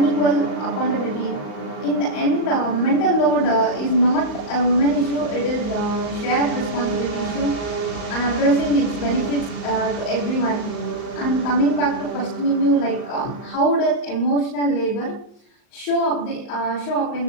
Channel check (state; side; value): late; right; 38 ms